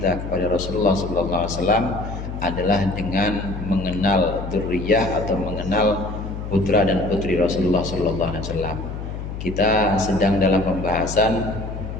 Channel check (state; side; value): noise; left; hum, 7 dB below the sound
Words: kepada Rasulullah SAW adalah dengan mengenal dzurriyyah atau mengenal putra dan putri Rasulullah SAW. Kita sedang dalam pembahasan